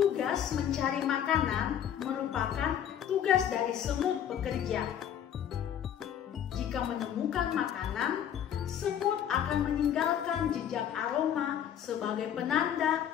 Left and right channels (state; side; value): quieter; right; 9.6 dB